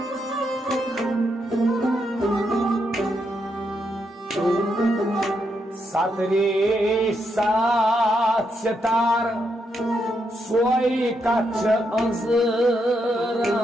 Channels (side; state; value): both; normal; correlation 0.80